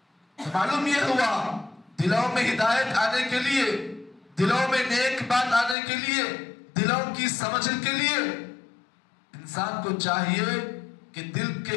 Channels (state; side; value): drops out; right; at 5.8 s